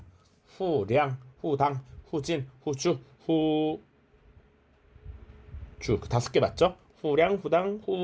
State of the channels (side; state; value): both; identical; correlation 1.00